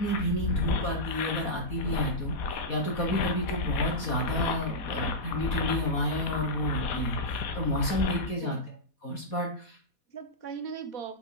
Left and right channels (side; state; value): right; late; 4.2 ms